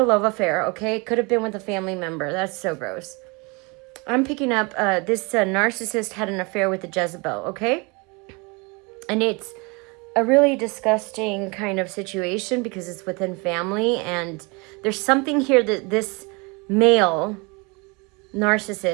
love affair, okay? Could have been with a family member. That's so gross. I'm picking up, this narcissist had an affair with a Jezebel, okay? And it's a really disgusting kind of situation because it's within family. And there's something here that this male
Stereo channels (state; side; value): quieter; left; 28.8 dB